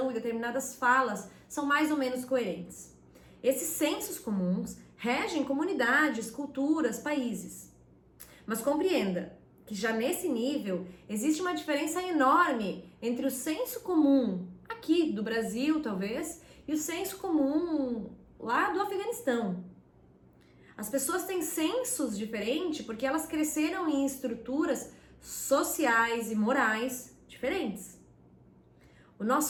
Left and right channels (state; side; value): identical; both; correlation 1.00